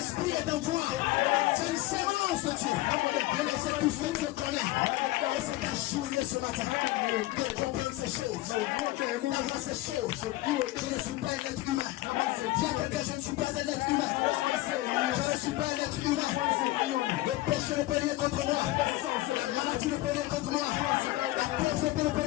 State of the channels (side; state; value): right; quieter; 17.9 dB